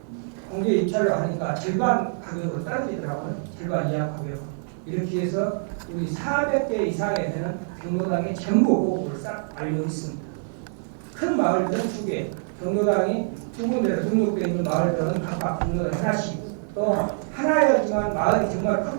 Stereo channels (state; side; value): silent; left; 62 dB below the other